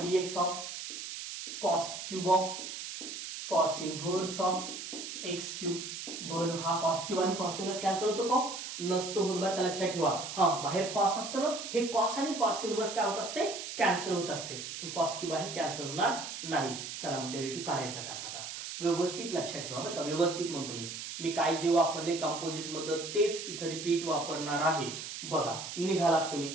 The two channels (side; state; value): right; noise; hiss, 8 dB below the sound